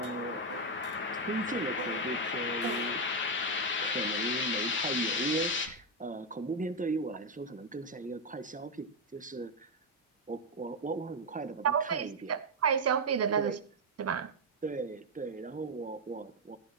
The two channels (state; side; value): normal; both; correlation 0.04